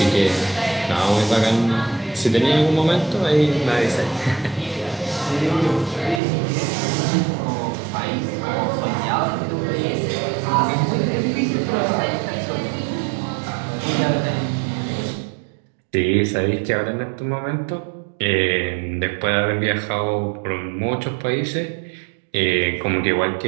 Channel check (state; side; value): drops out; left; at 6.2 s